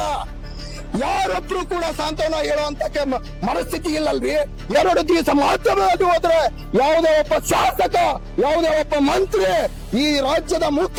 ಯಾರೊಬ್ರು ಕೂಡ ಸಾಂತ್ವನ ಹೇಳುವಂತ ಮನಸ್ಥಿತಿ ಇಲ್ಲಲ್ರಿ. 2 ದಿವಸ ಮಾಧ್ಯಮವಾಗಿ ಹೋದ್ರೆ ಯಾವುದೇ ಒಬ್ಬ ಶಾಸಕ, ಯಾವುದೇ ಒಬ್ಬ ಮಂತ್ರಿ, ಈ ರಾಜ್ಯದ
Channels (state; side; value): identical; both; correlation 1.00